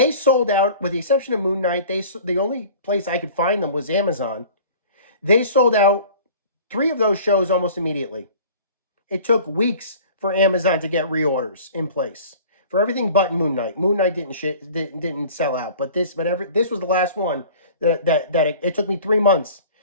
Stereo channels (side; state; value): both; inverted; correlation -0.45